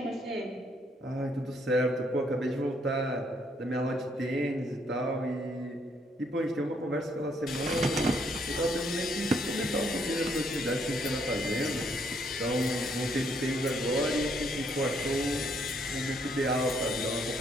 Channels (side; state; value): both; normal; correlation 0.70